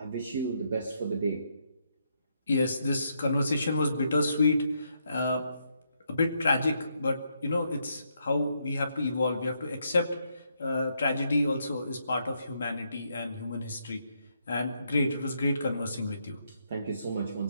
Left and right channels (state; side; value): inverted; both; correlation -0.77